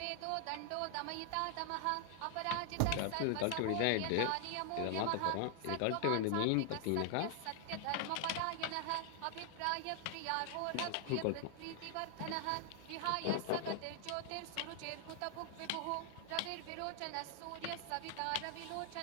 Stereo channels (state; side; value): different; both; correlation 0.00